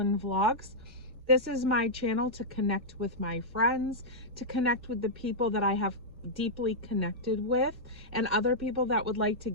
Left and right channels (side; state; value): both; normal; correlation -0.08